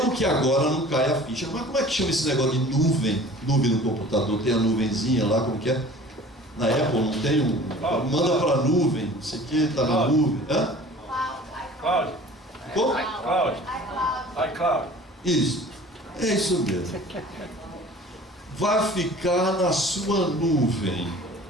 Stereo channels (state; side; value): normal; both; correlation 0.45